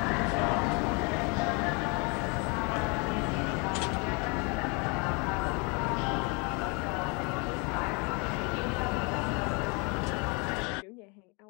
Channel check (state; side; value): quieter; right; 31.5 dB